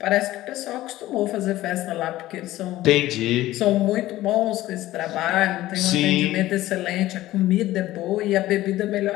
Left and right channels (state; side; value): quieter; right; 15.8 dB